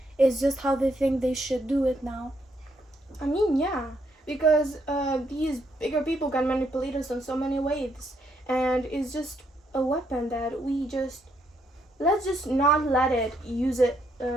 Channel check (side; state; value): both; normal; correlation 0.74